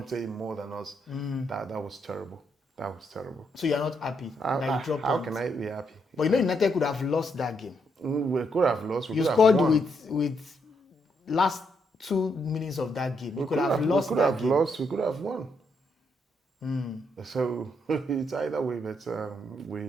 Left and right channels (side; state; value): both; normal; correlation 0.77